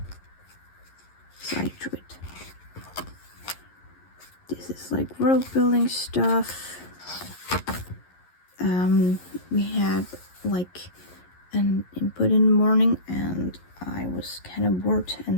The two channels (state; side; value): late; right; 11 ms